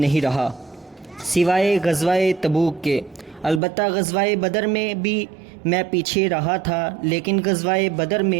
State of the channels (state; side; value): drops out; left; at 3.6 s